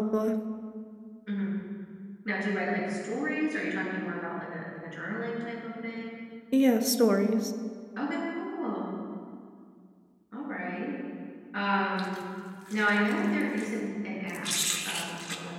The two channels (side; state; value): both; identical; correlation 1.00